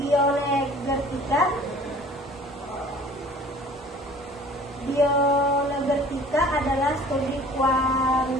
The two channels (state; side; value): normal; both; correlation 0.49